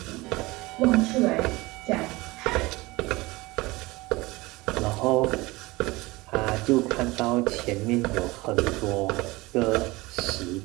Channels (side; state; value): left; quieter; 21.8 dB